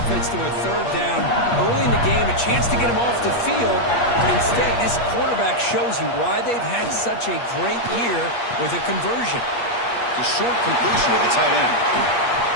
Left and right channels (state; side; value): late; right; 8.4 ms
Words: to a third down early in the game, a chance to get him off the field. But instead, this quarterback shows you why they've had such a great year with a conversion. The short completion of the tight end.